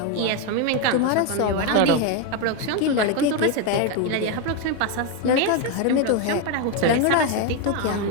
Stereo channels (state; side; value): different; both; correlation 0.02